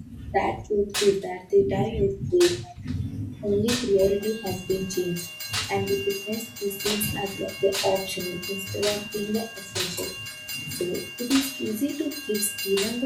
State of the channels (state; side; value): identical; both; correlation 1.00